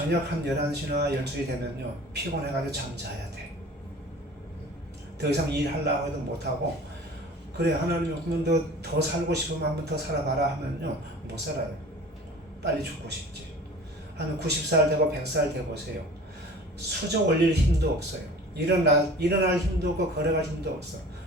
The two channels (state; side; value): normal; both; correlation 0.43